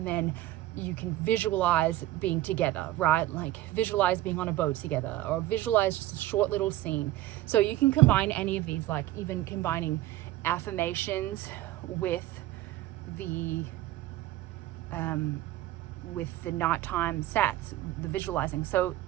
then you can visualize being together, right? Like visualize being on a boat together, or visualize just a short little scene. So you can combine any of these, like even combining affirmations with the nighttime SATs, the visualizing. So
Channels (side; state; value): left; quieter; 15.2 dB